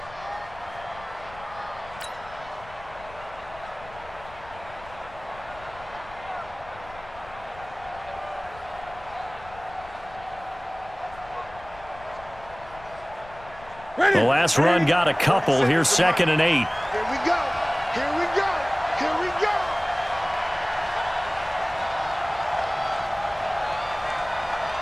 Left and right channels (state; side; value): noise; left; rumble, 20 dB below the sound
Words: The last run got a couple. Here's 2nd and 8. Here we go. Here we go. Here we go.